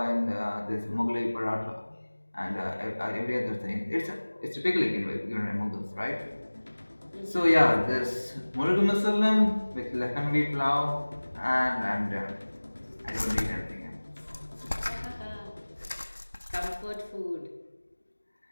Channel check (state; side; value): inverted; both; correlation -1.00